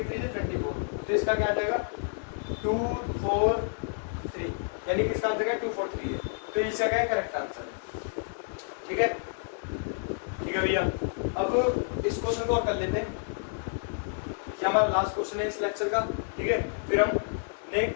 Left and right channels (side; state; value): right; silent; 58 dB below the other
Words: 3 जा 24, तो इसका क्या आ जाएगा 2 4 3, यानी कि इसका आंसर है 2 4 3 है, तो इसका क्या है करेक्ट आंसर है, ठीक है। ठीक है भैया, अब इस क्वेश्चन को और कर लेते हैं, ये हमारा लास्ट क्वेश्चन है इस लेक्चर का, ठीक है। फिर